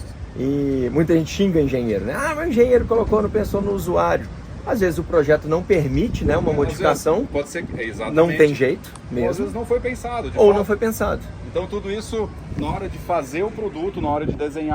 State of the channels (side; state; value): both; identical; correlation 1.00